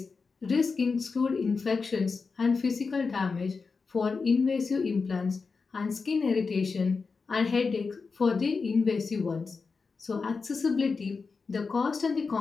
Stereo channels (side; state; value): right; quieter; 4.7 dB